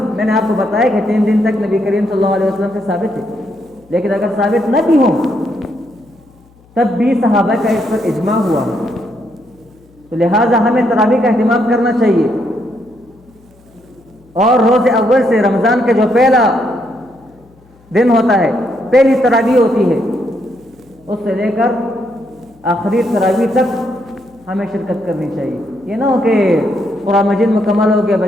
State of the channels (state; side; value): noise; left; hum, 29 dB below the sound